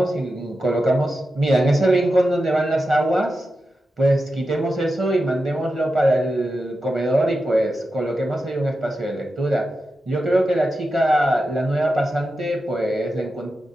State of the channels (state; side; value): normal; both; correlation 0.90